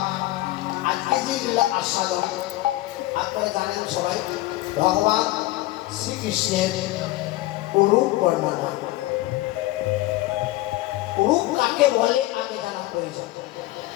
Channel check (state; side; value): quieter; right; 17.7 dB